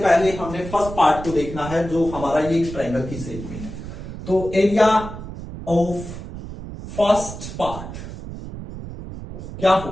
पहले हमने फर्स्ट पार्ट को देखना है जो हमारा ये ट्रायंगल की शेप में है। तो एरिया ऑफ फर्स्ट पार्ट क्या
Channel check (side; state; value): right; noise; rumble, 10 dB below the sound